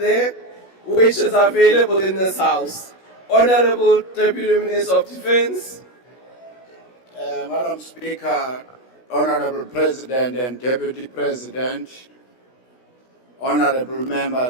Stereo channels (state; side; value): late; right; 16 ms